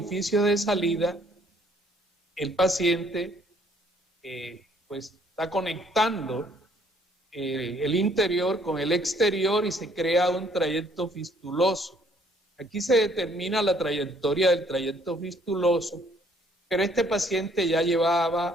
de salida, el paciente pues está conectando el interior con el exterior y se crea un trayecto fistuloso. Aquí se determina la trayectoria del trayecto fistuloso, pero este paciente ya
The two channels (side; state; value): both; normal; correlation 0.63